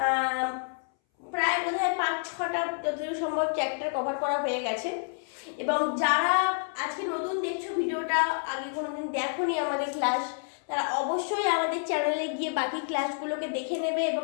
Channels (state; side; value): silent; right; 59 dB below the other